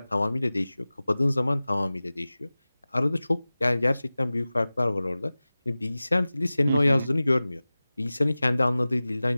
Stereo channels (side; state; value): both; inverted; correlation -0.97